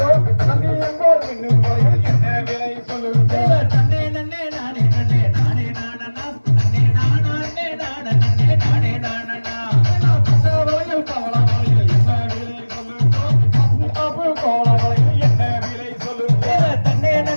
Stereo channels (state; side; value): inverted; both; correlation -1.00